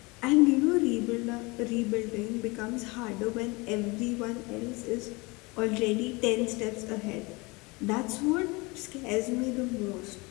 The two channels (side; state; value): right; quieter; 25.8 dB